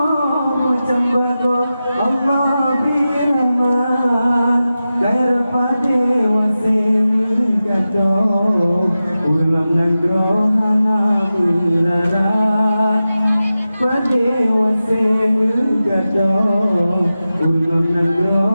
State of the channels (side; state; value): both; inverted; correlation -0.93